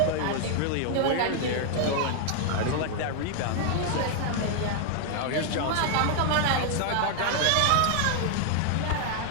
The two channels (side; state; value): both; different; correlation 0.00